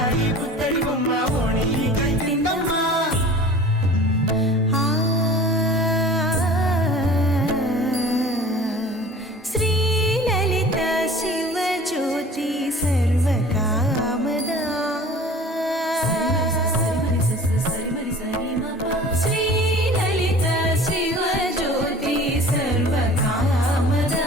పుత్తడి బొమ్మ ఓణి కట్టిందమ్మా శ్రీలలిత శివజ్యోతి సర్వకామదా శ్రీలలిత శివజ్యోతి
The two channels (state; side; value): normal; both; correlation 0.44